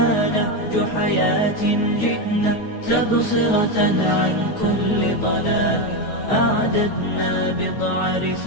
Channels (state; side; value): late; right; 9.3 ms